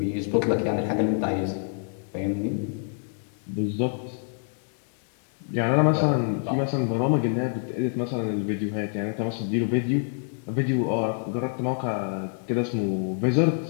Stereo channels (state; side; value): silent; right; digital silence